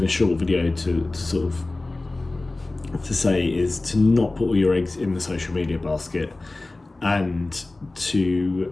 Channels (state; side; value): quieter; right; 3.1 dB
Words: a short video, to sort of to say, is to not put all your eggs in the social media basket, and to